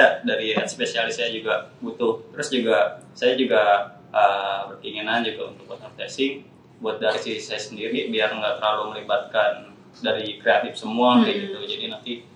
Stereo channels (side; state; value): both; identical; correlation 1.00